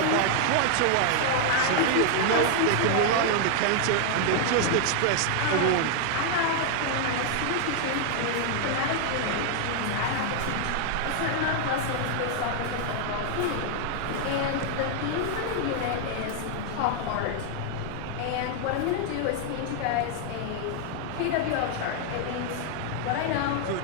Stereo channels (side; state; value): both; different; correlation 0.00